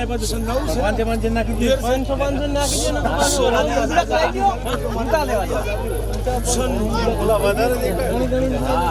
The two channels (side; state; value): both; identical; correlation 1.00